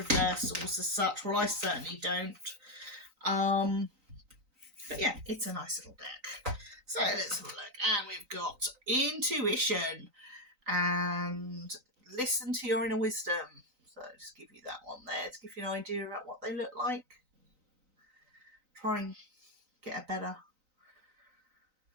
as such. Well, I certainly don't. But yeah, it's a nice little deck. So let's have a look. And we've got intuition and listen to your inner wisdom. So I'll just give you that one there to give you an idea about what they look like. Try and get a better.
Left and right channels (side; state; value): left; late; 3.9 ms